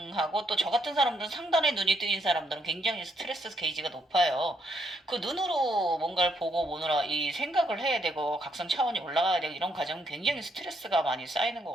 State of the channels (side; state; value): both; normal; correlation 0.74